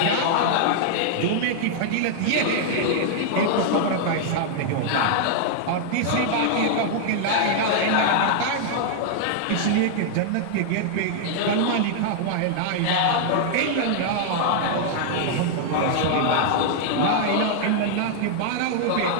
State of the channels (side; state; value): both; different; correlation -0.01